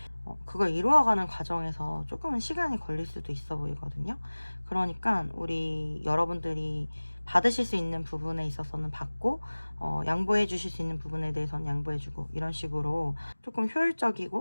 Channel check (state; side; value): inverted; both; correlation -1.00